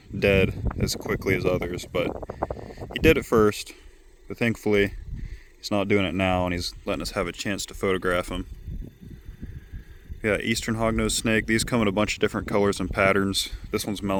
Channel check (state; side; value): identical; both; correlation 1.00